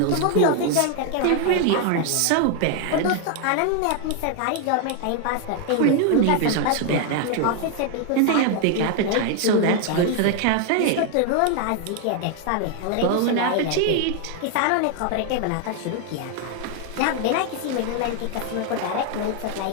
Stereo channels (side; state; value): both; different; correlation 0.00